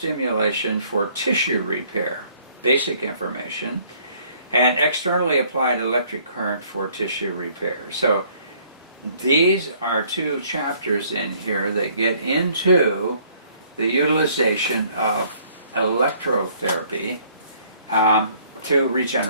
for tissue repair, basic information, and externally applied electric current for tissue repair. So these are two chapters in here that get into the utilization of electrotherapy to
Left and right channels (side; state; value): both; inverted; correlation -0.61